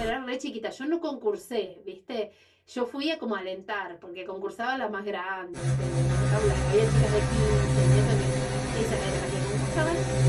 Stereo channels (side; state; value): both; identical; correlation 1.00